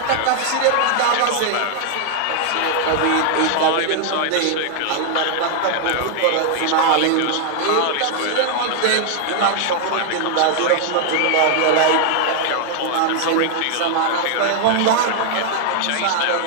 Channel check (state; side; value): different; both; correlation 0.00